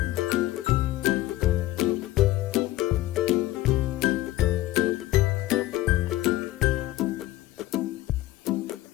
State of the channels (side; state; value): right; quieter; 16.2 dB